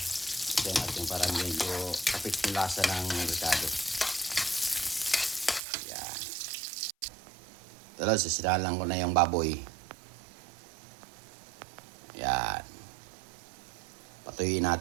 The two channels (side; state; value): left; drops out; at 5.6 s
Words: Ito natin para medyo kapit yung lasa ng ricado. Ayan. Tapos sasinalang ko na yung baboy. Ayan. Patuyuin